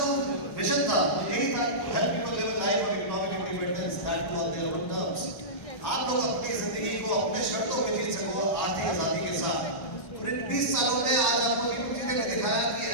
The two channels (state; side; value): late; right; 1.1 ms